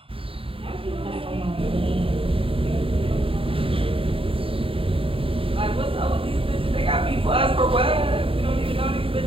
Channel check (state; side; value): late; left; 0.26 ms